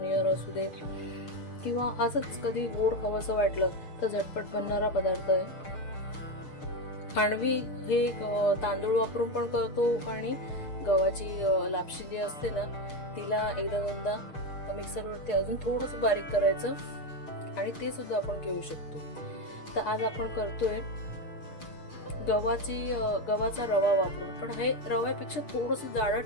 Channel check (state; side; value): late; right; 6.7 ms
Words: असू दे, किंवा असंच कधी गोड खावंसं वाटलं तर झटपट बनणारा पदार्थ आहे। खांडवी हे तांदूळ वापरून पण करतो आणि गव्हाची लापशी जी असते ना तिला एकदा दोनदा मिक्सरवरती अजून थोडंसं बारीक करायचं आणि ते सुद्धा आपण घेऊ शकतो। तर आज आपण करतोय गव्हाचा रवा वापरून, पण हे रव्यापेक्षा थोडंसं जाडं